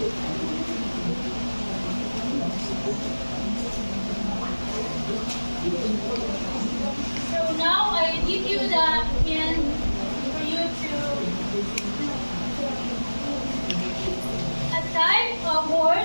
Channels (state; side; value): inverted; both; correlation -1.00